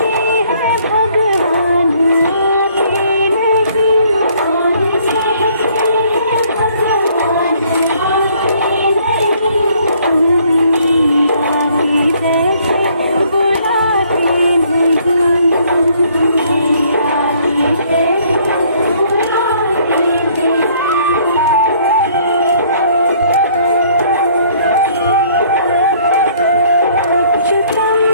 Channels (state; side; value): inverted; both; correlation -0.61